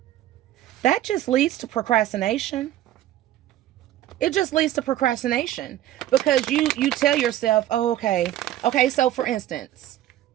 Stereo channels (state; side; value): quieter; left; 13.3 dB